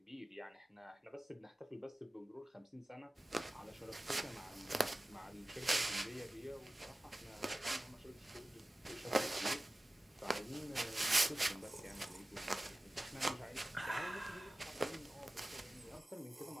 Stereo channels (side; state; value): both; normal; correlation 0.96